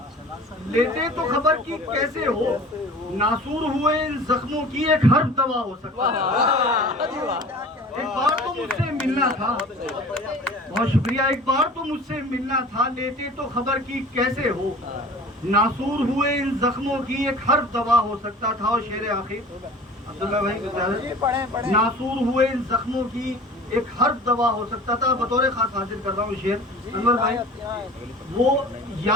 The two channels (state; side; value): normal; both; correlation 0.42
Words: लेते तो खबर की कैसे हो। नासूर हुए इन जख्मों की एक हर्फ दवा हो सकता था। एक बार तो मुझसे मिलना था। बहुत शुक्रिया। एक बार तो मुझसे मिलना था, लेते तो खबर की कैसे हो। नासूर हुए इन जख्मों की एक हर्फ दवा हो सकता था। और शेर आखिर अब्दुल्ला भाई, नासूर हुए इन जख्मों की एक हर्फ दवा हो सकता था। बतौर खास हाजिर कर रहा हूँ शेर अनवर भाई। वो